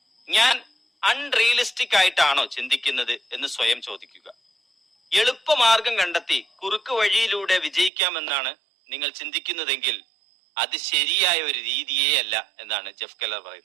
ഞാൻ അൺറിയലിസ്റ്റിക് ആയിട്ടാണോ ചിന്തിക്കുന്നത് എന്ന് സ്വയം ചോദിക്കുക. എളുപ്പമാർഗം കണ്ടെത്തി കുറുക്ക് വഴിയിലൂടെ വിജയിക്കാമെന്നാണ് നിങ്ങൾ ചിന്തിക്കുന്നതെങ്കിൽ അത് ശരിയായ ഒരു രീതിയേ അല്ല എന്നാണ് ജെഫ് കെല്ലർ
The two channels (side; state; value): left; drops out; at 7.9 s